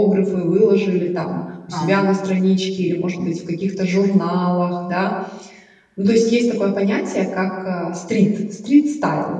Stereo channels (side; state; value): both; identical; correlation 1.00